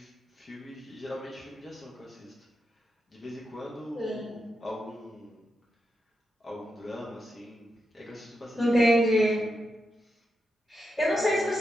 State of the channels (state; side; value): normal; both; correlation 0.86